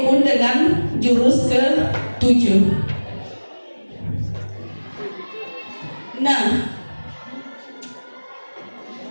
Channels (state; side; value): inverted; both; correlation -1.00